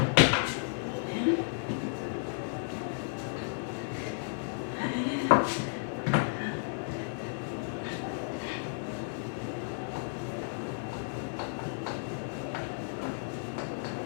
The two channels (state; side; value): silent; right; 56 dB below the other